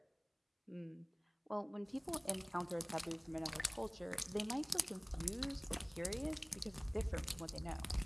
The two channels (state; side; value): identical; both; correlation 1.00